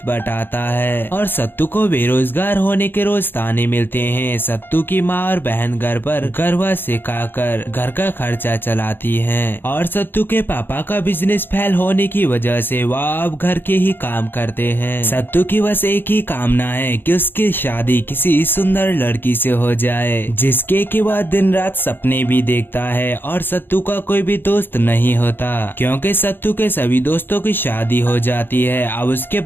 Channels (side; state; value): right; late; 0.099 ms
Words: बटाता है और सत्तू को बेरोजगार होने के रोज ताने मिलते हैं। सत्तू की माँ और बहन घर पर गरबा सिखाकर घर का खर्चा चलाती हैं और सत्तू के पापा का बिजनेस फेल होने की वजह से वह अब घर के ही काम करते हैं। सत्तू की बस एक ही कामना है कि उसकी शादी किसी सुंदर लड़की से हो जाए, जिसके के बाद दिन रात सपने भी देखता है। और सत्तू का कोई भी दोस्त नहीं होता क्योंकि सत्तू के सभी दोस्तों की शादी हो जाती है। अब उसके